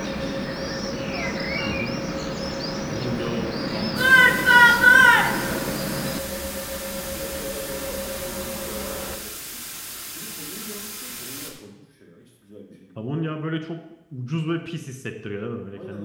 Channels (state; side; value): identical; both; correlation 1.00